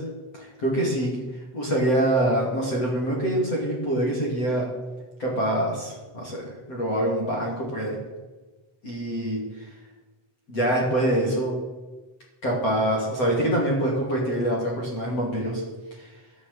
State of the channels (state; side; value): late; right; 7.8 ms